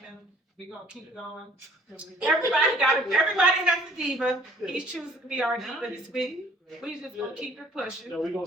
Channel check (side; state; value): both; normal; correlation 0.56